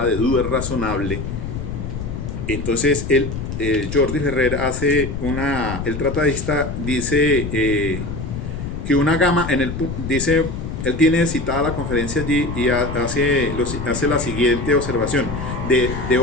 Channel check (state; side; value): noise; left; rumble, 6 dB below the sound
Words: de duda razonable. Entonces Jordi Ferrer el tratadista dice que una gama, dice, él tiene citada la conferencia allí y hace la siguiente observación, de